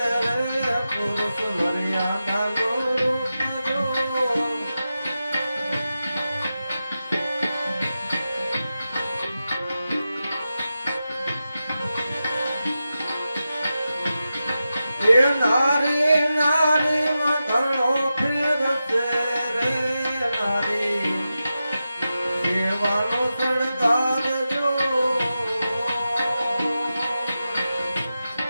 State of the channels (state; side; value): inverted; both; correlation -0.91